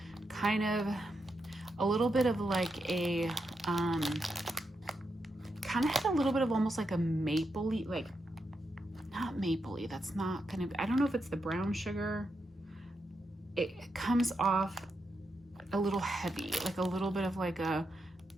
kind of a little bit of like a, kind of had a little bit of almost like a mapley, like, not mapley, that's not gonna be, I don't know if it's the brown sugar. It comes off a little heavy, like a little bit of like a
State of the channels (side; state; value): both; normal; correlation 0.84